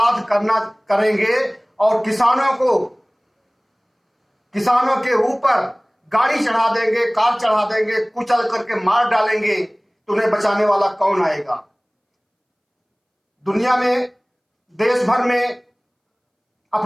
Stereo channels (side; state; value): both; identical; correlation 1.00